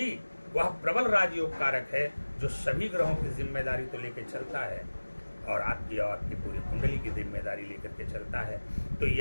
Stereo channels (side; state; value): both; inverted; correlation -1.00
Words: वह प्रबल राजयोग कारक है जो सभी ग्रहों की जिम्मेदारी तो लेकर चलता है और आपकी पूरी कुंडली की जिम्मेदारी लेकर के चलता है। तो